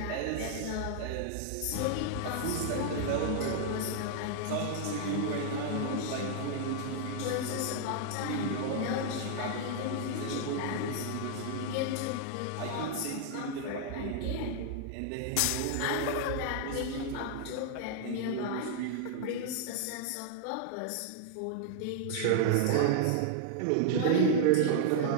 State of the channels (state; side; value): different; both; correlation -0.01